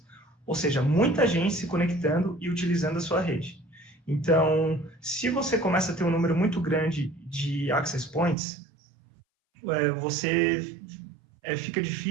Ou seja, muita gente se conectando e utilizando a sua rede. Então, se você começa a ter um número muito grande de access points, fica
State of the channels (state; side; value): drops out; left; at 8.3 s